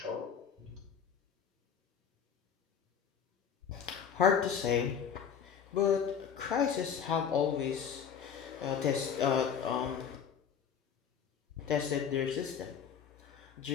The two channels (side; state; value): right; quieter; 7.6 dB